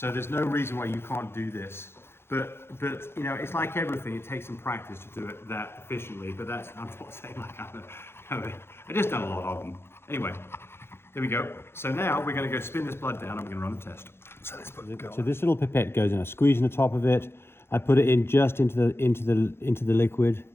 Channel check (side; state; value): right; late; 0.12 ms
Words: there's no reason why you can't do this. But it's like everything. It takes some practice to do it that efficiently. But I'm not saying like I just done a lot of them. Anyway, there we go. So now we're going to go spin this blood down. And we're going to run the test. So let's put it go. So this little pipette goes in. I squeeze in the top of it. I put it in just into the liquid.